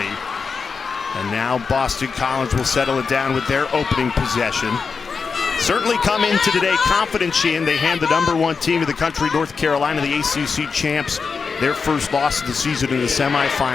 And now Boston College will settle it down with their opening possession. Certainly come into today confident, Sheehan. They hand the #1 team of the country, North Carolina, the ACC champs, their first loss of the season in the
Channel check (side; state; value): right; quieter; 5.2 dB